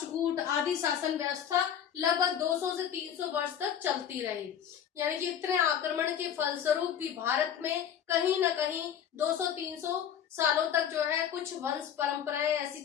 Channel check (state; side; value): quieter; right; 9.0 dB